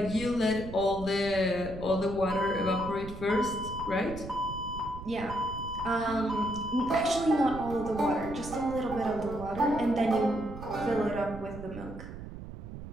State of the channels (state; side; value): noise; right; rumble, 11 dB below the sound